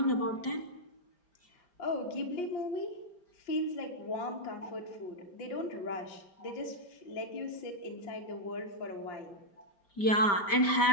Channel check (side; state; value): right; late; 5.1 ms